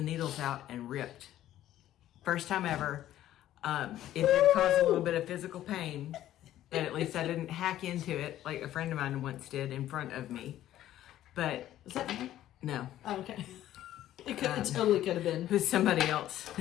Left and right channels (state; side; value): quieter; right; 13.0 dB